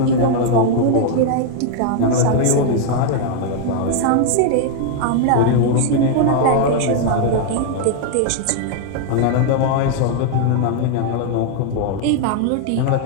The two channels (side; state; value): both; different; correlation 0.00